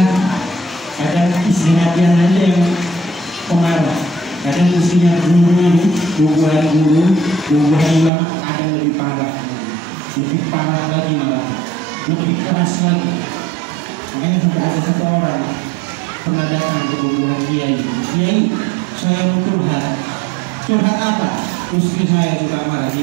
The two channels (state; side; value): drops out; left; at 8.1 s